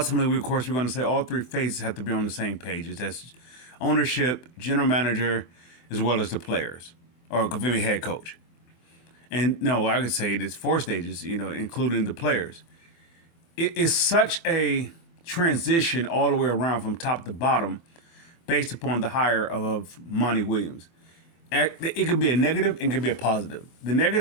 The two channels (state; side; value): late; right; 24 ms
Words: of course, we're going to say all three phases have to be on the same pages. That's ownership, general manager, as well as the players, or give me head coach. And no, I could say it's four stages, including the players. It is such a transition all the way around from top to bottom based upon the hire of Monty Williams. It could be a negative and it could be a positive. The